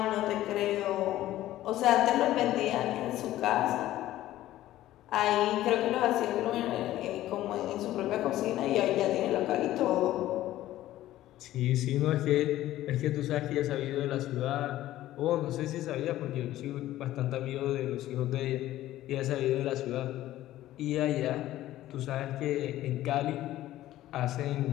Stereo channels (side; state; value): right; quieter; 14.5 dB